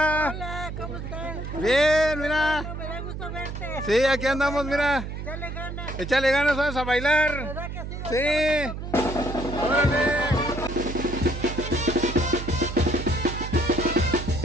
Hola, ¿cómo estás? Bien, mira. No, me da gusto verte. Sí, aquí andamos, mira. Dale ganas. Échale ganas, vamos a bailar. ¿Verdad que sí? Sí. Órale.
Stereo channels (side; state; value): right; noise; hum, 7 dB below the sound